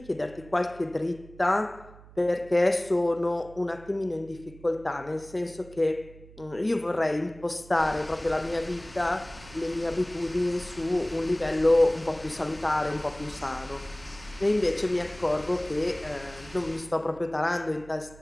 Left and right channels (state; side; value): noise; right; hum, 21 dB below the sound